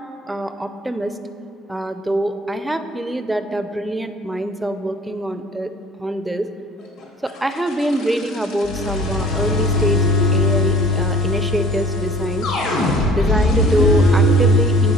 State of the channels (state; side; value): normal; both; correlation 0.50